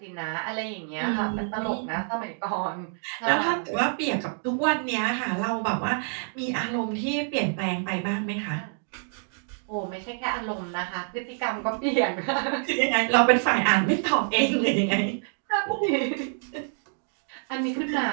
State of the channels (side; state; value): left; silent; 60 dB below the other